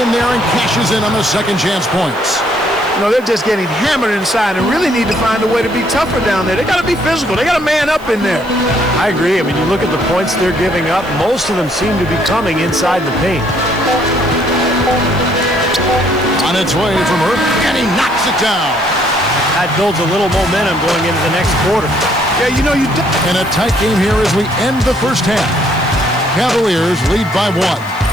there and cashes in on the second chance points. You know, they're just getting hammered inside and really need to find a way to be tougher down there. They got to be physical. They got to man up in there. I agree. I mean, you look at the points they're giving up, most of them seem to be coming inside the paint. On its way from Irving, and he knocks it down. That builds a little momentum going into the next quarter. Yeah, you know, And a tight game here as we end the first half. Cavaliers lead by 1.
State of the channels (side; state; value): right; noise; hiss, 24 dB below the sound